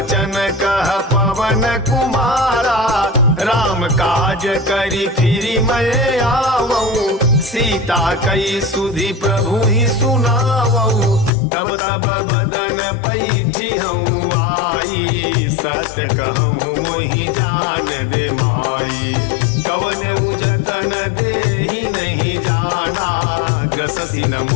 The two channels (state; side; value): drops out; right; at 11.3 s